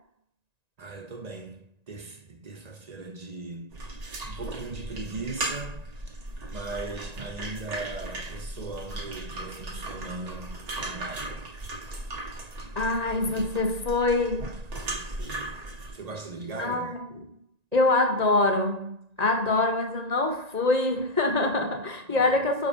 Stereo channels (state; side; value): late; left; 1.9 ms